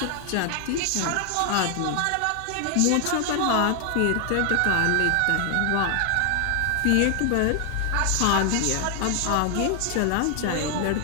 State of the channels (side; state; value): both; different; correlation 0.00